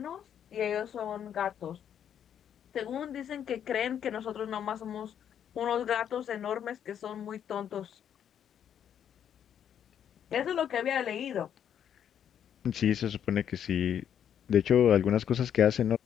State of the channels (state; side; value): quieter; right; 9.1 dB